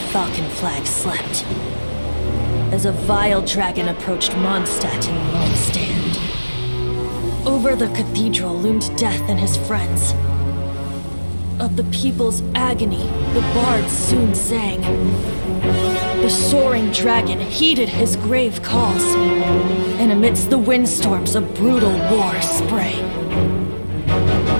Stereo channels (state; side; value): inverted; both; correlation -1.00